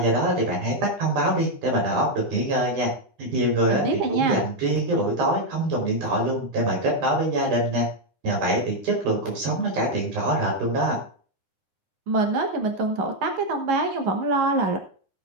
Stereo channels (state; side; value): late; left; 9.8 ms